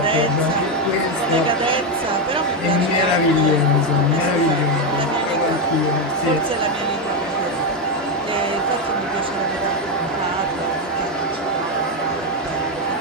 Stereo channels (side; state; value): both; normal; correlation 0.08